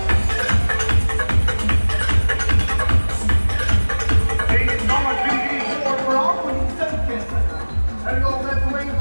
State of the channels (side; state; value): both; inverted; correlation -1.00